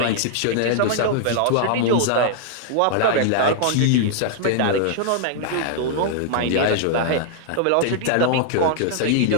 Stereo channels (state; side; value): different; both; correlation -0.01